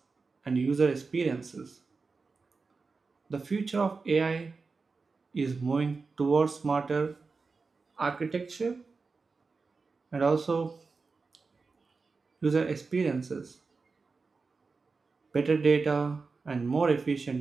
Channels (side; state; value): left; quieter; 4.4 dB